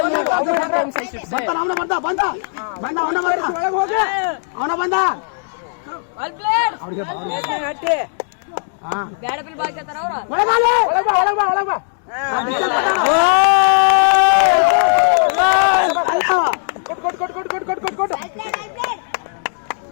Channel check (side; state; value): right; silent; digital silence